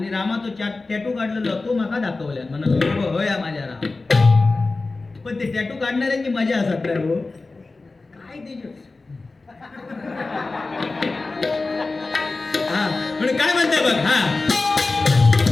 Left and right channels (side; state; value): right; quieter; 3.6 dB